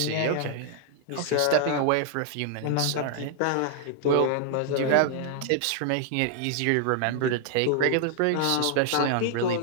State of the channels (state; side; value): different; both; correlation 0.00